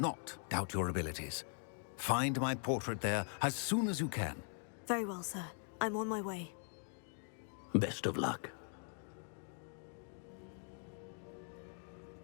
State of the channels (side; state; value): right; silent; 50 dB below the other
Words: doubt your abilities. Find my portrait there as soon as you can. Very well, sir. I'm on my way. Best of luck.